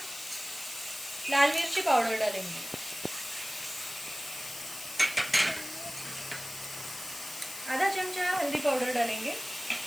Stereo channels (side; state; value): left; noise; hiss, 10 dB below the sound